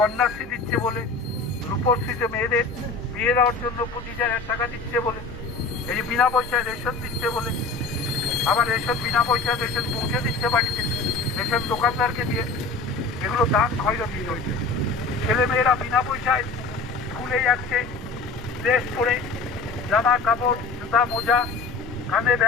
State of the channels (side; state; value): right; quieter; 3.9 dB